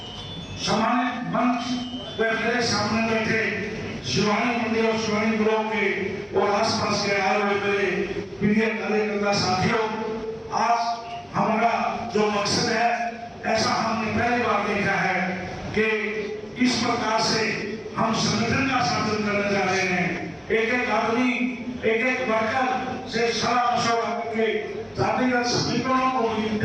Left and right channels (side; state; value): both; identical; correlation 1.00